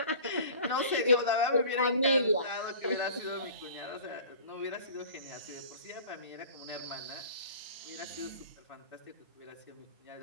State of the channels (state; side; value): inverted; both; correlation -0.43